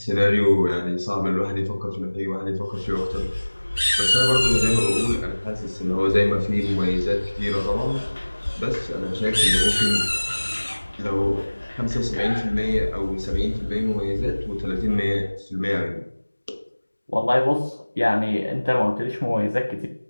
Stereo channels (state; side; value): inverted; both; correlation -1.00